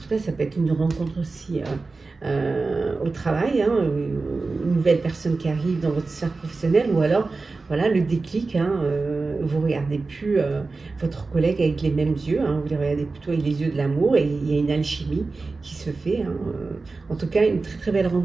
cas, ça peut être une rencontre aussi au travail, hein, une nouvelle personne qui arrive dans votre sphère professionnelle, ou alors voilà le déclic, hein, vous ne regardez plus votre collègue avec les mêmes yeux, hein, vous les regardez plutôt avec les yeux de l'amour et il y a une alchimie qui se fait. Hein, en tout cas, une très très belle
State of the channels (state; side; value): quieter; left; 3.8 dB